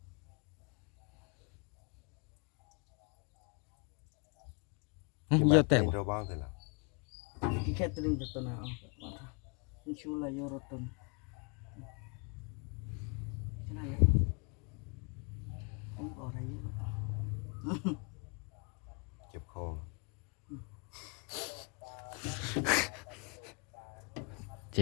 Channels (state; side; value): quieter; right; 36.1 dB